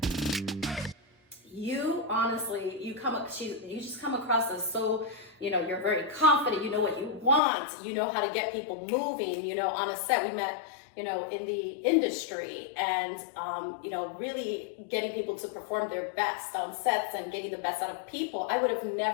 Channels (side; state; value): right; drops out; at 7.4 s